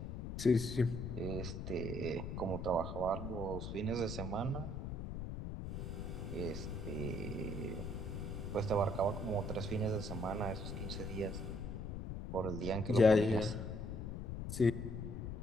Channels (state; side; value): noise; left; rumble, 5 dB below the sound